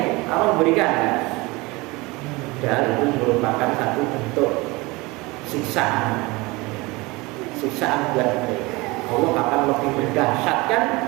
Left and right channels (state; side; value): quieter; left; 23.5 dB